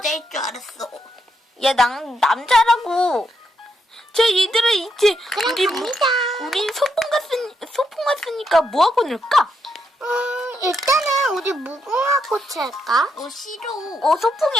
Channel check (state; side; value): normal; both; correlation 0.79